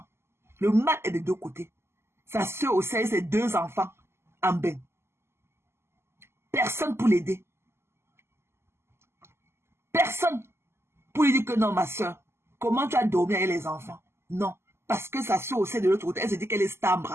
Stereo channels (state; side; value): late; left; 0.12 ms